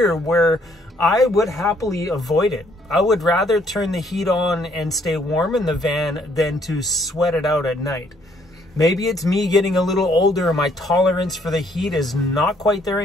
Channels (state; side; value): normal; both; correlation 0.67